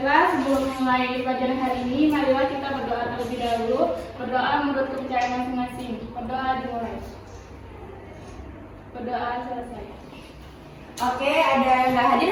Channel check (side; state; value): both; identical; correlation 1.00